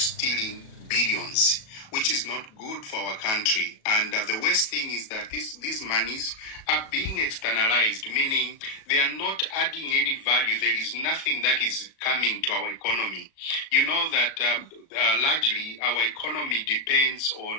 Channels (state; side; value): late; right; 37 ms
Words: billions, which is not good for our country. And the worst thing is that these monies are being externalized, meaning they are not adding any value. There is nothing that is coming to our economy. You know that largely our economy depends